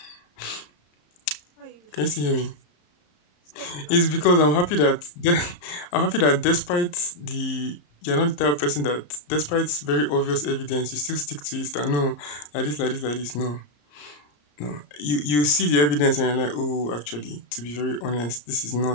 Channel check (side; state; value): right; late; 34 ms